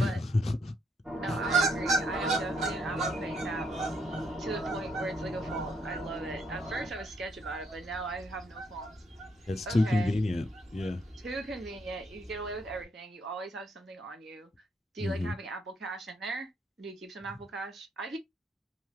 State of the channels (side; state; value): both; normal; correlation 0.73